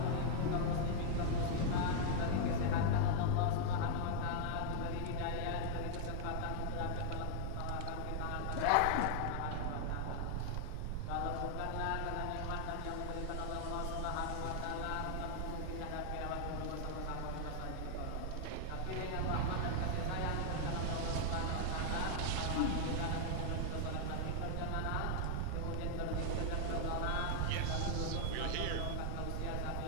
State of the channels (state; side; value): different; both; correlation 0.00